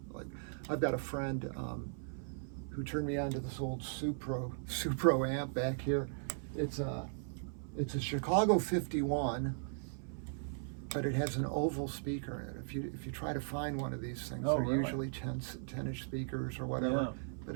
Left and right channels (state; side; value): silent; left; 53 dB below the other